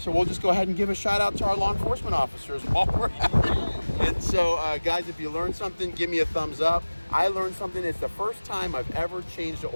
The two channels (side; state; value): both; inverted; correlation -1.00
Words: we'll just go ahead and give a shout out to our law enforcement officers while we're at it. And so, guys, if you learned something, give me a thumbs up. I learned something. It's the first time I've ever changed the